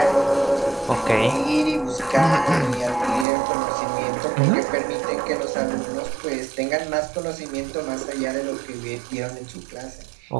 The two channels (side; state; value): left; drops out; at 3.2 s